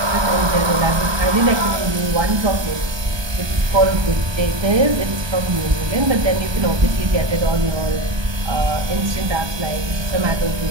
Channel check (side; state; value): left; late; 1.2 ms